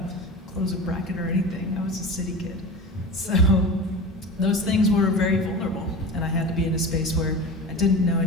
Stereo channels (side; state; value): both; normal; correlation 0.31